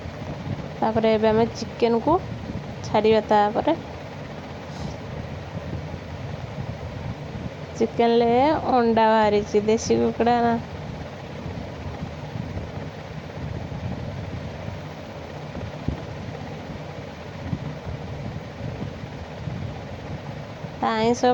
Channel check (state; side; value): identical; both; correlation 1.00